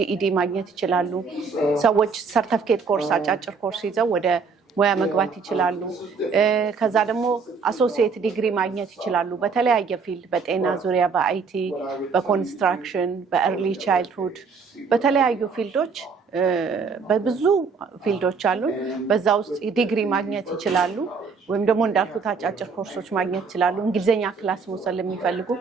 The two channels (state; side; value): quieter; left; 5.2 dB